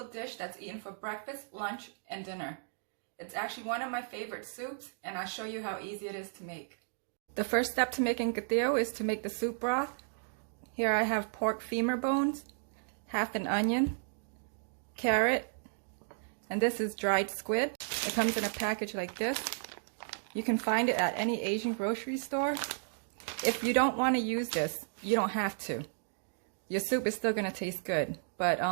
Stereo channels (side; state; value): left; silent; digital silence